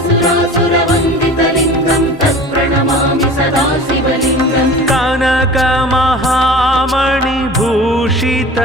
तत्प्रणमामि सदा शिवलिङ्गम्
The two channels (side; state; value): both; normal; correlation 0.40